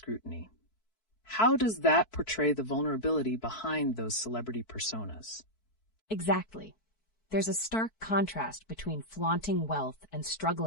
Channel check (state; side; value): late; right; 4.6 ms